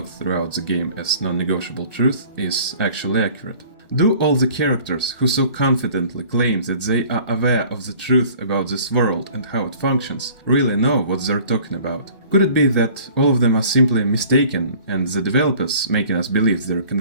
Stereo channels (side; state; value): both; inverted; correlation -0.50